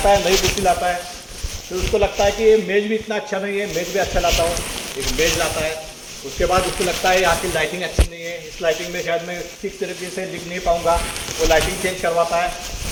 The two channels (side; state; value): both; identical; correlation 1.00